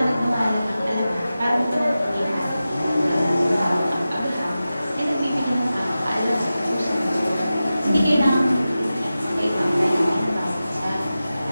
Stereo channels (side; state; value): both; inverted; correlation -0.94